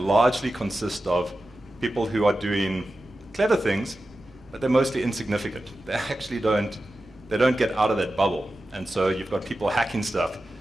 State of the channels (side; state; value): both; normal; correlation 0.93